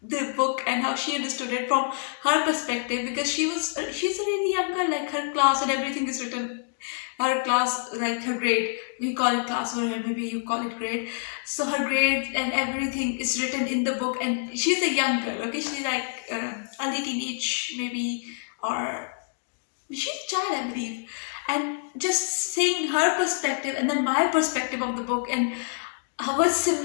the book and how she understood it from her perspective, because she's a really young girl, like her class and everything is written, her class, like her grade, we call it class over here, maybe you call it grade. So her grade and everything is written in the book, and she's a young girl, okay, she's like early teenage maybe, or she's a child, I believe. And just seeing her perspective and then my perspective of the book, and what's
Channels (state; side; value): silent; right; digital silence